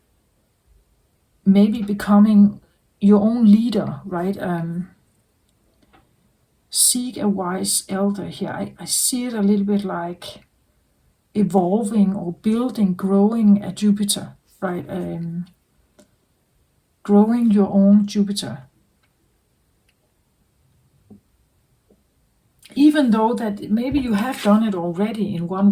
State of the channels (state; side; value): identical; both; correlation 1.00